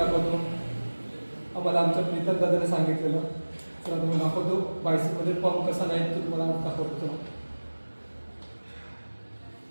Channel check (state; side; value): inverted; both; correlation -1.00